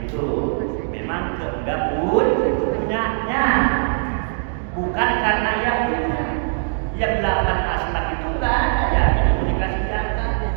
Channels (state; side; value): silent; left; digital silence